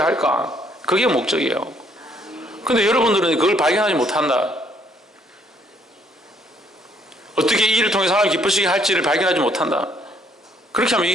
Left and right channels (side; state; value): both; normal; correlation 0.67